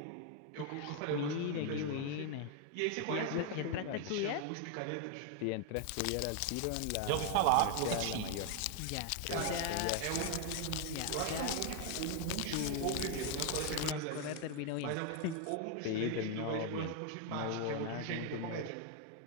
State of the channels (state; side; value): different; both; correlation 0.00